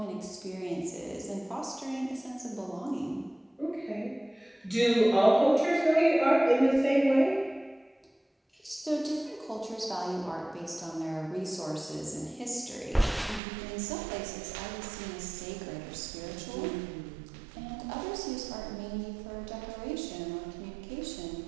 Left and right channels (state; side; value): drops out; left; at 13.4 s